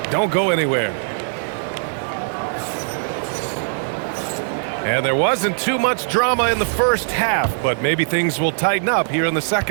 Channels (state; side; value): silent; left; 63 dB below the other